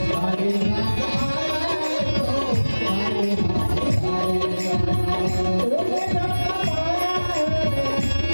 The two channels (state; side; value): inverted; both; correlation -1.00